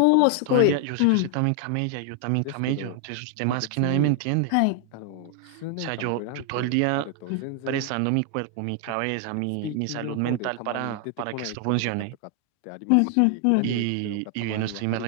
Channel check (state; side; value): different; both; correlation 0.00